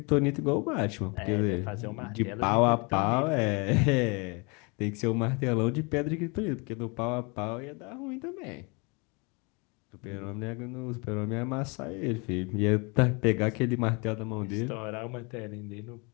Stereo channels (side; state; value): right; quieter; 30.2 dB